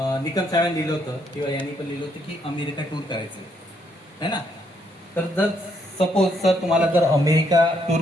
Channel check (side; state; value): both; normal; correlation 0.72